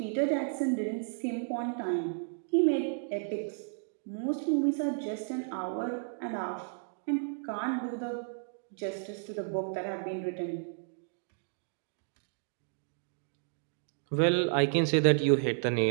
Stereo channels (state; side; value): silent; left; digital silence